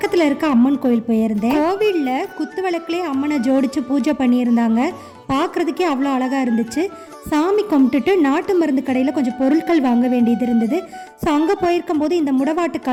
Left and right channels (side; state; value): both; identical; correlation 1.00